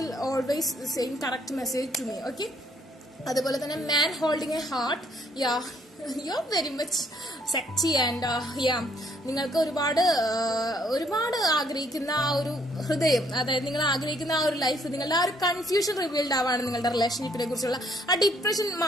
always same correct message to me. Okay, അതുപോലെ തന്നെ man holding a heart. You are very much sexy and നിങ്ങൾക്ക് ഒരുപാട് ആഗ്രഹിക്കുന്ന ആ ഒരു ഹൃദയം, അതായത് നിങ്ങൾ ആഗ്രഹിക്കുന്ന ആ ഒരു ലൈഫ്, നിങ്ങളുടെ ആ ഒരു കൺഫ്യൂഷൻ റിവീൽഡ് ആവാണ്. നിങ്ങളുടെ റിലേഷൻഷിപ്പിനെ കുറിച്ചുള്ള ആ ഡിപ്രഷൻ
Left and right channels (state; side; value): normal; both; correlation 0.66